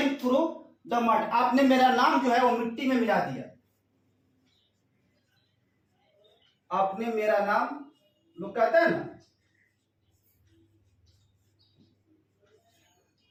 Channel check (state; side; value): identical; both; correlation 1.00